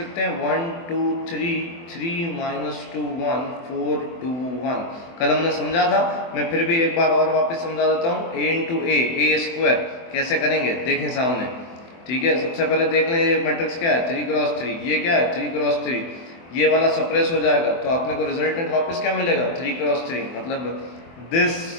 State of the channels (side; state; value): right; late; 24 ms